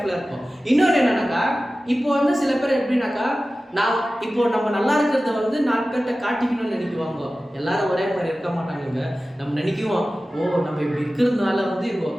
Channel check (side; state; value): both; normal; correlation 0.96